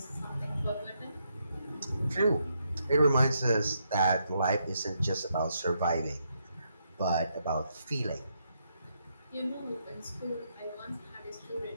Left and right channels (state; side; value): inverted; both; correlation -0.78